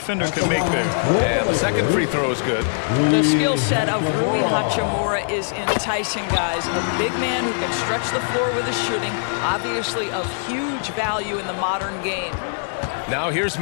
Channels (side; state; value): right; silent; digital silence